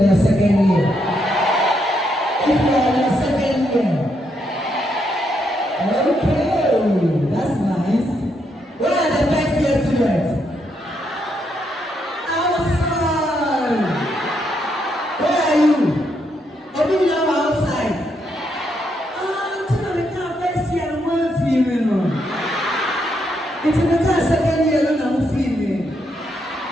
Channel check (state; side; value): normal; both; correlation 0.78